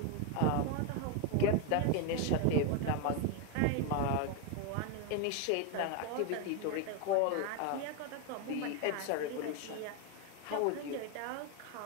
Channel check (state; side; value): different; both; correlation 0.01